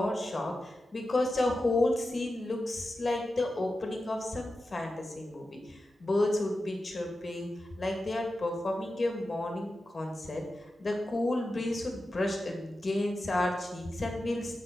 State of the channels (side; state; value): both; normal; correlation 0.92